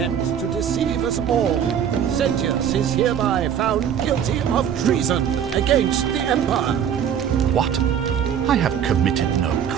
to deceive us all. Sentius is hereby found guilty of treason against the Empire. What? I have committed no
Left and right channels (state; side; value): quieter; left; 8.8 dB